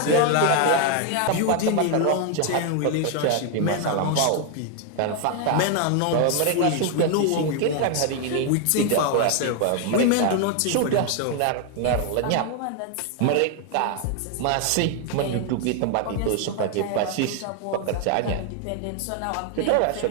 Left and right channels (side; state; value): both; different; correlation 0.00